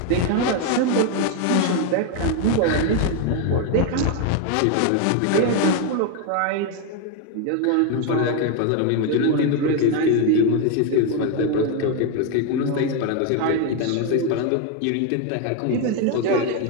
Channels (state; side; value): different; both; correlation 0.01